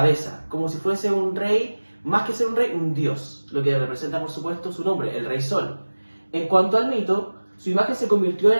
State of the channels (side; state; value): both; inverted; correlation -1.00